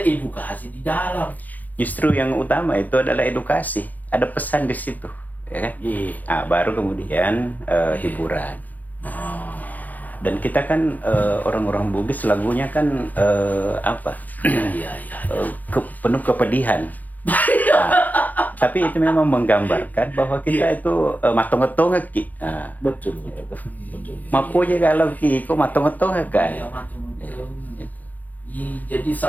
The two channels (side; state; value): right; late; 0.081 ms